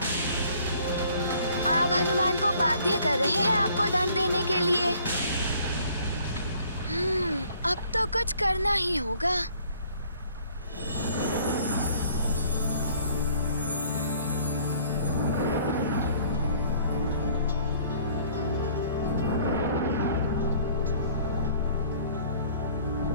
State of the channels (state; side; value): inverted; both; correlation -0.57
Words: आप हनुमान को बाध्य कर रहे हैं आपको दंड देने के लिए। अब तो कुछ करना ही होगा।